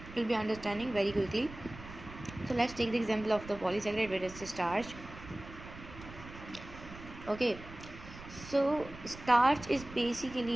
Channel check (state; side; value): noise; right; rumble, 15 dB below the sound